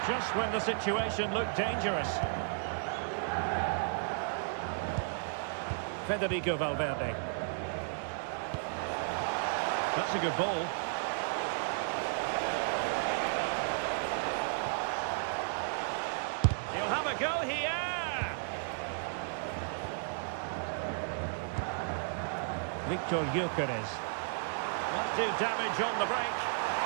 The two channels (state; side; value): silent; left; digital silence